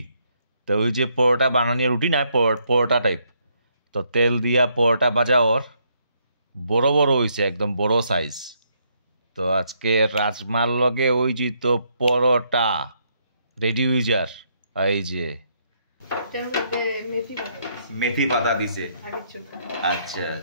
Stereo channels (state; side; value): inverted; both; correlation -0.73